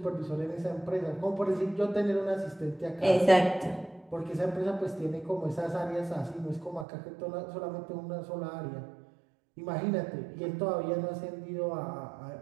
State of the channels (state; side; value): drops out; left; at 6.9 s